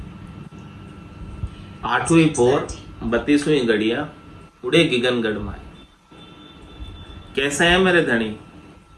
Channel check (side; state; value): both; identical; correlation 1.00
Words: 8वीं पोर 32वीं गड़िया उड़े गिगन गढ़ माए। कैसे है मेरे धनी,